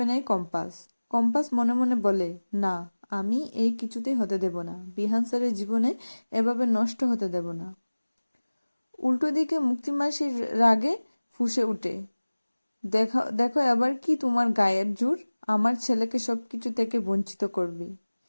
নেয় কম্পাস। কম্পাস মনে মনে বলে, না, আমি এই কিছুতেই হতে দেব না। বিহান স্যারের জীবনে এভাবে নষ্ট হতে দেব না। উল্টো দিকে মুক্তিমাসির রাগে ফুঁসে উঠে, দেখো দেখো এবার কি তোমার গায়ের জোর, আমার ছেলেকে সবকিছু থেকে বঞ্চিত করবে।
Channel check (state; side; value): inverted; both; correlation -1.00